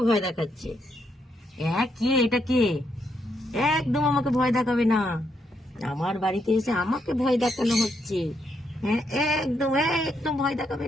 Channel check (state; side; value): normal; both; correlation 0.78